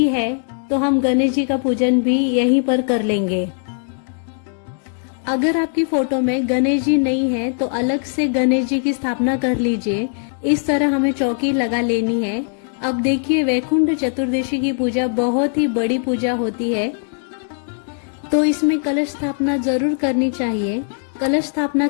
है तो हम गणेश जी का पूजन भी यहीं पर कर लेंगे। अगर आपकी फोटो में गणेश जी नहीं है तो अलग से गणेश जी की स्थापना कर लीजिए। इस तरह हमें चौकी लगा लेनी है। अब देखिए, वैकुंठ चतुर्दशी की पूजा बहुत ही बड़ी पूजा होती है, तो इसमें कलश स्थापना जरूर करनी चाहिए। कलश स्थापना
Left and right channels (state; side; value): silent; right; 63 dB below the other